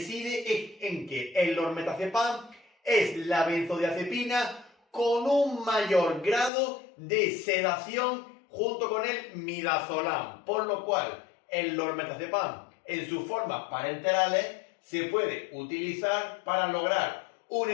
en que el lormetazepam es la benzodiazepina con un mayor grado de sedación junto con el midazolam, por lo cual el lormetazepam en sus formas parenterales se puede utilizar para lograr un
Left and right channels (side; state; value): right; drops out; at 6.5 s